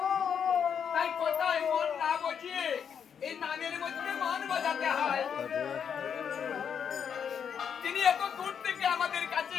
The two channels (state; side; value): quieter; right; 7.6 dB